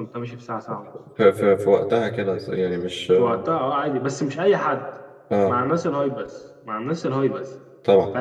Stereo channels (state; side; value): identical; both; correlation 1.00